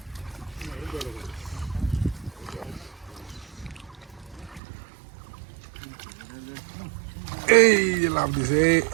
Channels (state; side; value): drops out; left; at 4.6 s